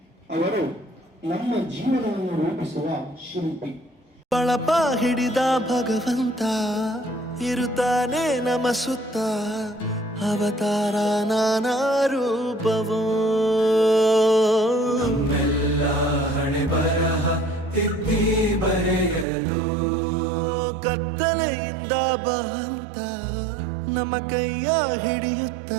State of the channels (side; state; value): left; drops out; at 19.2 s